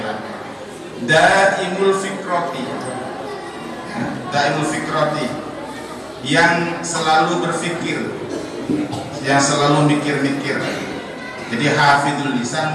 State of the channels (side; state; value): both; identical; correlation 1.00